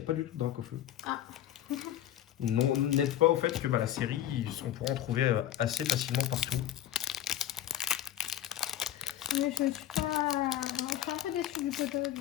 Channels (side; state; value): right; quieter; 12.1 dB